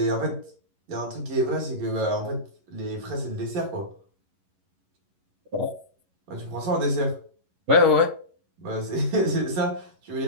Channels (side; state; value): left; late; 11 ms